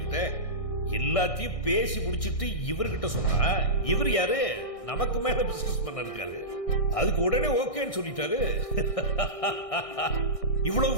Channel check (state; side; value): late; right; 1.6 ms